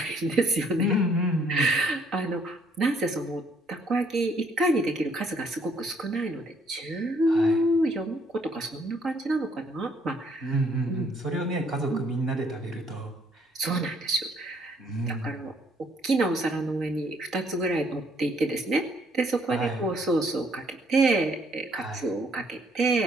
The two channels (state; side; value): normal; both; correlation 0.66